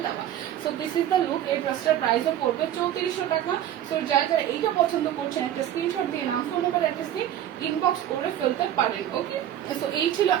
দেওয়া। So this is the look. এই ড্রেসটার প্রাইসও পড়বে 3400 টাকা। সো যারা এইটা পছন্দ করছেন একটা স্ক্রিনশট দিয়ে নাম ফোন নাম্বার অ্যাড্রেস দিয়ে ইনবক্স করে ফেলতে পারেন, ওকে। সো এই ছিল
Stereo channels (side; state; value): left; quieter; 11.4 dB